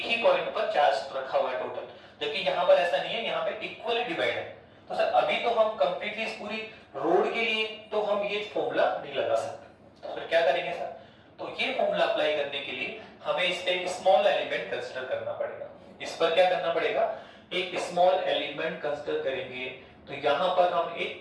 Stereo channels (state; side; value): identical; both; correlation 1.00